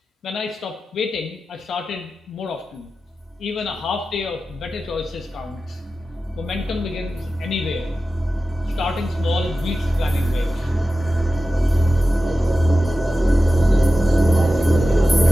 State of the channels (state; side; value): normal; both; correlation 0.94